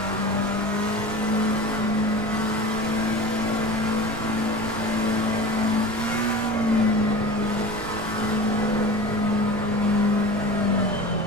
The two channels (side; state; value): right; noise; rumble, 17 dB below the sound